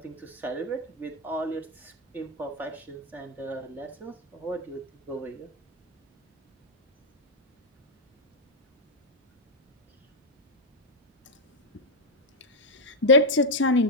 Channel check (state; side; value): normal; both; correlation -0.01